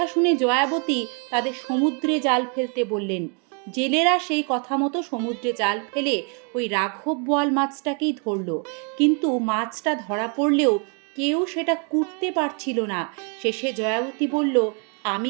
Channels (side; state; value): left; quieter; 37.8 dB